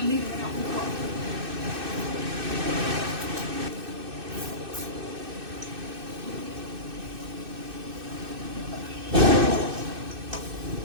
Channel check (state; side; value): late; left; 2.6 ms